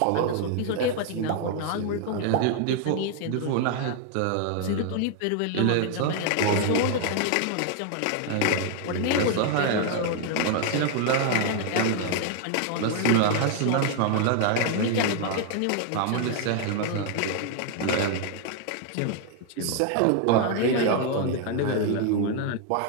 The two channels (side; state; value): both; different; correlation 0.00